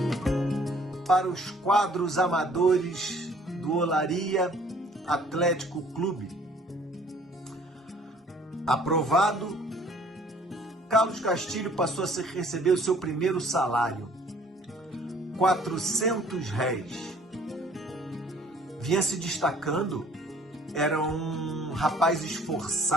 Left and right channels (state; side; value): normal; both; correlation 0.57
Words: Para os quadros amadores do Olaria Atlético Clube. Aprovado, Carlos Castilho passou a receber o seu primeiro salário, 400 réis. Vinha se destacando, era um rapaz